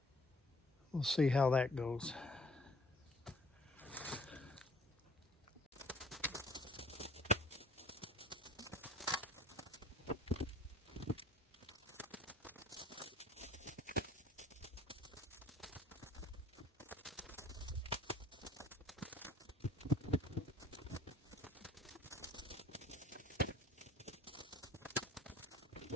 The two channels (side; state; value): both; normal; correlation 0.54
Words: We'll see how that goes.